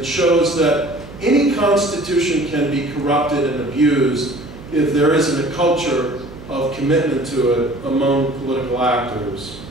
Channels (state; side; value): noise; right; hum, 16 dB below the sound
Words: shows that any constitution can be corrupted and abused if there isn't a culture of commitment to it among political actors.